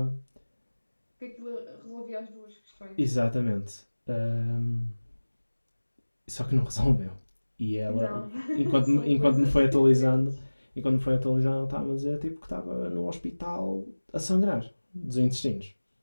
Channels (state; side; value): inverted; both; correlation -1.00